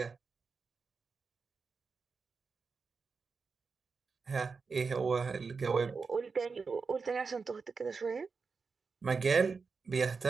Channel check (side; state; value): left; quieter; 4.9 dB